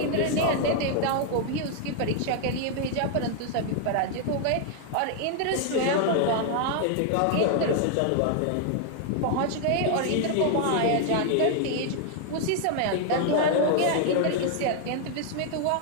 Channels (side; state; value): both; different; correlation 0.00